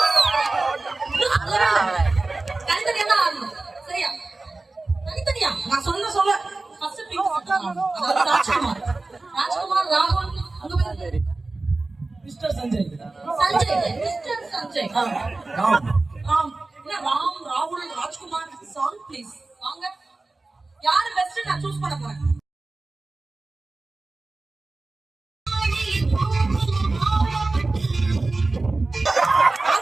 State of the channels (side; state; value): left; quieter; 3.3 dB